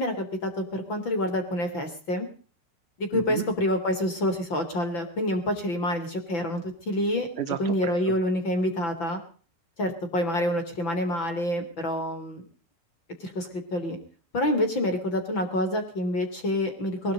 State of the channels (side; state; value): right; late; 5.9 ms